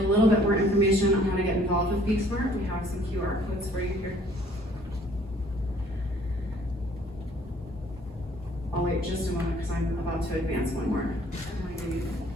little bit more information on how to get involved with Be Smart, we have some QR codes for you here. I'll wait just a moment because I'm about to advance one more.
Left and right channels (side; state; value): both; normal; correlation 0.58